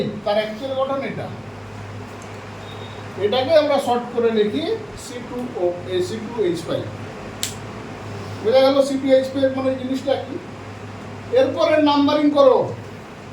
তার অ্যাকচুয়াল গঠন এটা। এটাকে আমরা শর্ট করে লিখি C2H5। বোঝা গেল C2H5 মানে জিনিসটা কি। এরপরে নাম্বারিং করো।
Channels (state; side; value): identical; both; correlation 1.00